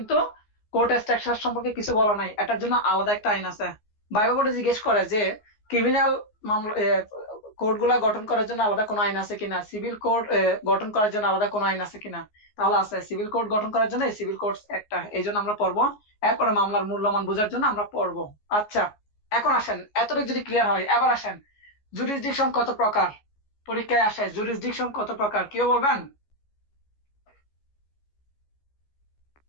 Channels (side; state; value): right; late; 14 ms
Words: কোর্ট স্ট্রাকচার সম্পর্কে কিছু বলা নাই, এটার জন্য আলাদা একটা আইন আছে। ভাইভা বোর্ডে জিজ্ঞেস করে যে ক্রিমিনাল মামলা কোড গুলা গঠন করার জন্য আলাদা কোনো আইন আছে কিনা, সিভিল কোড গঠন করার জন্য আলাদা কোনো আইন আছে কিনা। তাহলে আছে, সিভিল কোড গঠন করার জন্য সিভিল কোর্টস একটা, এই জন্য আমরা পড়বো। এরপরে মামলার মূল্যমান বোঝার জন্য আমরা পড়বো। আচ্ছা, এখন আসেন, এতটুকু যদি ক্লিয়ার হয়, এবার আসেন জুরিসডিকশন কত প্রকার পরীক্ষায় আসে, জুরিসডিকশন কত প্রকার কেউ বলবেন?